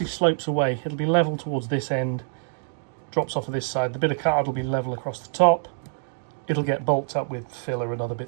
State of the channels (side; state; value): left; silent; digital silence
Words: slopes away. It'll be level towards this end, drops off of this side. The bit of card will be level across the top. It'll get bolted up with filler and other